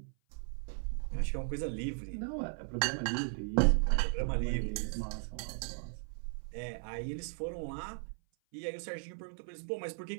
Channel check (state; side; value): silent; left; 53 dB below the other